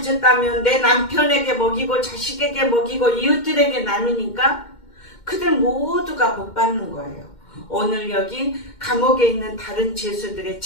내 남편에게 먹이고 자식에게 먹이고 이웃들에게 나누니까 그들 모두가 복받는 거예요. 오늘 여기 감옥에 있는 다른 죄수들의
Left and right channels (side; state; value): right; late; 2.1 ms